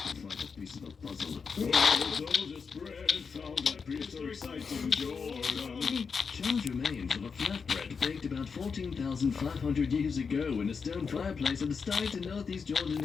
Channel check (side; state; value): right; quieter; 5.6 dB